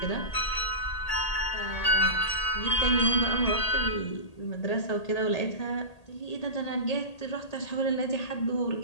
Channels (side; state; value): right; late; 1.8 ms